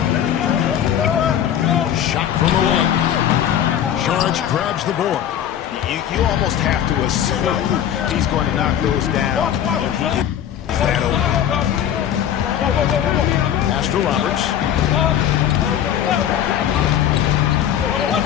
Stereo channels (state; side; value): quieter; right; 10.2 dB